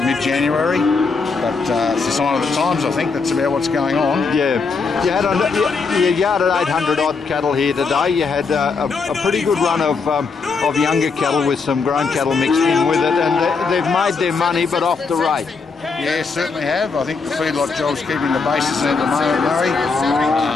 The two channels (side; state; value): right; quieter; 4.7 dB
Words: But it's a sign of the times, I think. That's about what's going on. Yeah. You yarded 800 odd cattle here today. You had a pretty good run of younger cattle with some grown cattle mixed in with it, and they've made their money, but off the rate. Yeah, certainly have. I think the feedlot job's keeping the bases in at the moment, Murray.